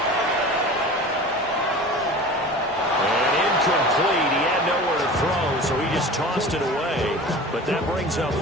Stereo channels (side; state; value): both; normal; correlation 0.37